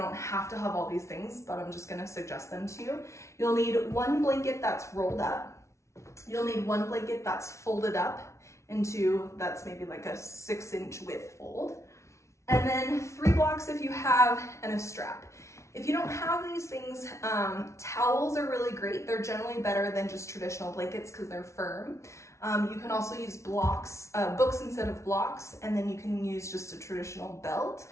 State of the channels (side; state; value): right; late; 0.14 ms